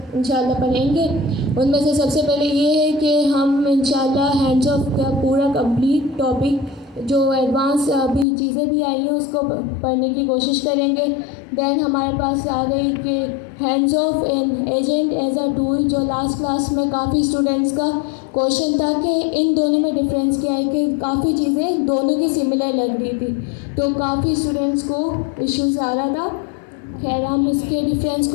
इंशाल्लाह पढ़ेंगे। उनमें से सबसे पहले ये है कि हम इंशाल्लाह हैंड्स ऑफ का पूरा कंप्लीट टॉपिक जो एडवांस अभी चीज़ें भी आई हैं उसको पढ़ने की कोशिश करेंगे। देन हमारे पास आ गई कि hands off an agent as a tool, जो लास्ट क्लास में काफ़ी स्टूडेंट्स का क्वेश्चन था कि इन दोनों में डिफरेंस क्या है, कि काफ़ी चीज़ें दोनों की सिमिलर लग रही थी, तो काफ़ी स्टूडेंट्स को इश्यूज आ रहा था। खैर, हम इसके डिफरेंस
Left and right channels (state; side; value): drops out; right; at 8.2 s